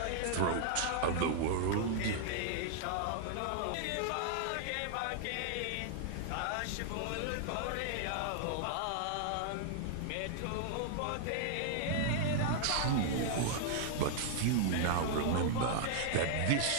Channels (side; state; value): both; different; correlation -0.01